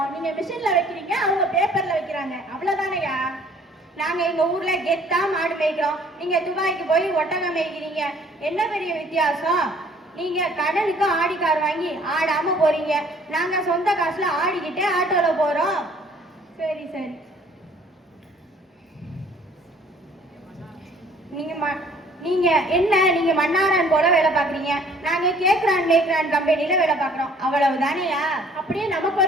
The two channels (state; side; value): normal; both; correlation 0.57